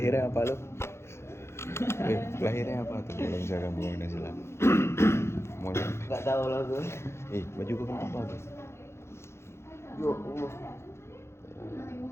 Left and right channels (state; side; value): late; right; 0.13 ms